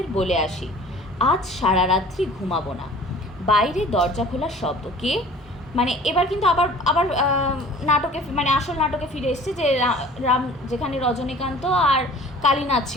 বলে আসি, আজ সারা রাত্রি ঘুমাবো না। বাইরে দরজা খোলার শব্দ। কে? মানে এবার কিন্তু আবার আবার নাটকে, মানে আসল নাটকে ফিরে এসছে, যে রাম যেখানে রজনীকান্ত আর কালীনাথ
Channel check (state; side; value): normal; both; correlation 0.47